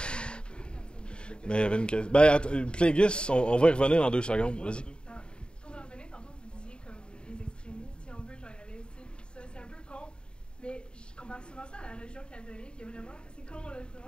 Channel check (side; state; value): right; late; 0.051 ms